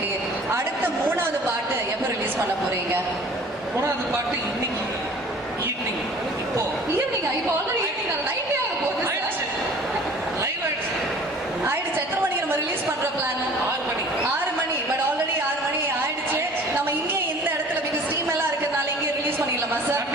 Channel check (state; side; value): normal; both; correlation 0.48